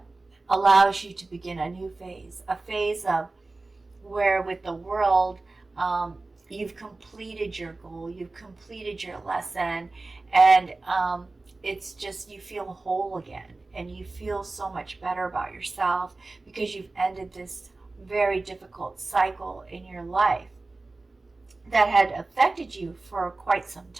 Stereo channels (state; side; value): quieter; left; 3.3 dB